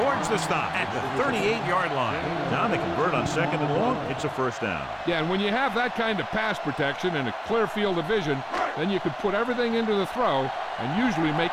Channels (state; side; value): identical; both; correlation 1.00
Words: the stop at the 38-yard line. Now they convert on 2nd and long. It's a first down. Yeah, and when you have that kind of pass protection and a clear field of vision, then you can put everything into the throw and usually